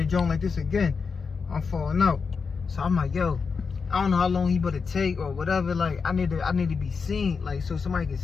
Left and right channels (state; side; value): quieter; right; 5.3 dB